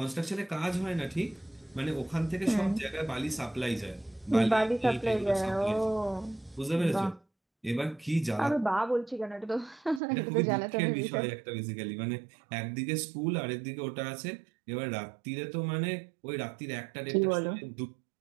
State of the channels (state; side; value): drops out; left; at 10.0 s